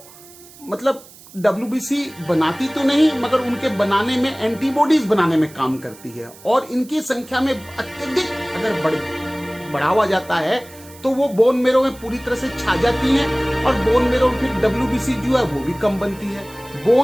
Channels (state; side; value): noise; right; hiss, 21 dB below the sound